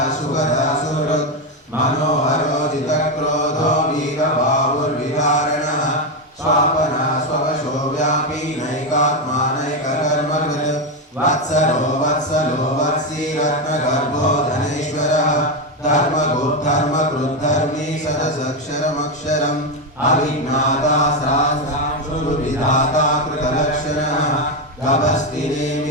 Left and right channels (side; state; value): both; normal; correlation 0.09